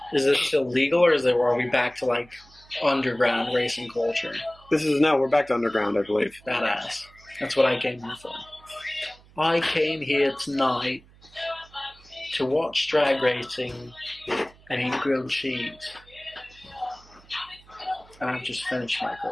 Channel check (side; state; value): right; noise; hum, 26 dB below the sound